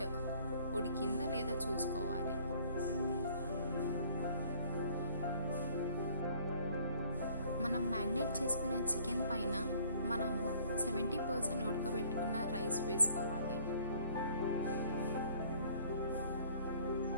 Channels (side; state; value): both; inverted; correlation -0.58